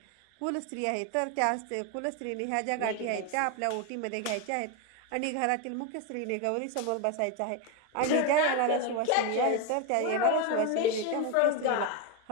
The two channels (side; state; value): both; different; correlation 0.02